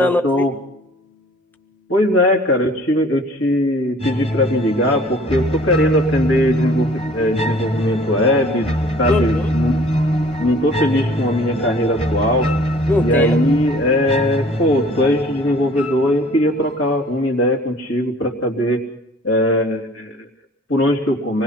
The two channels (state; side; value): normal; both; correlation 0.52